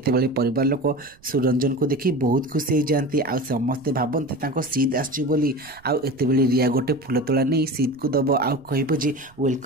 परिवार लोक सुरंजन को देखी बहुत खुशी हो जाती आ समस्ते भावती सीध आसुली आते रिया गोटे फुल तोड़ा नहीं सीध को दब आ कह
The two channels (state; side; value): noise; right; rumble, 28 dB below the sound